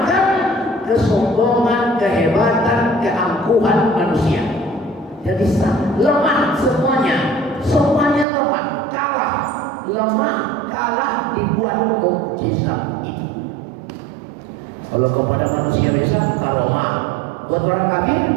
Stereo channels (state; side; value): drops out; left; at 8.2 s